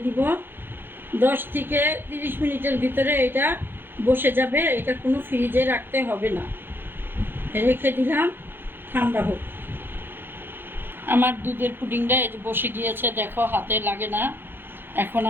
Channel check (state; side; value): late; left; 0.10 ms